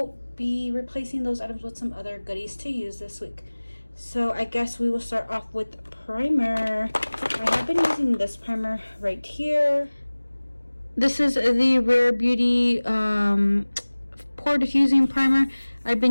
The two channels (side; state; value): both; inverted; correlation -1.00